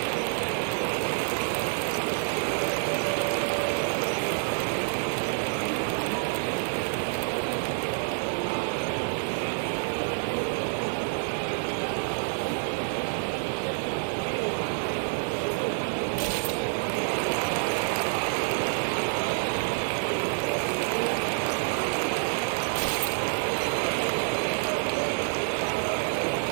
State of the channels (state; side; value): silent; left; 59 dB below the other